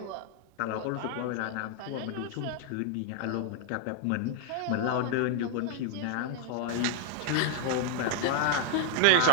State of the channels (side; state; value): both; different; correlation 0.00